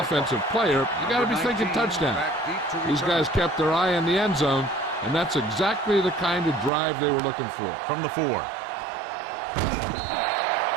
player, you got to be thinking touchdown. These guys kept their eye on the end zone, and that's exactly the kind of drive they were looking for. From the 4.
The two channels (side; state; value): left; drops out; at 6.7 s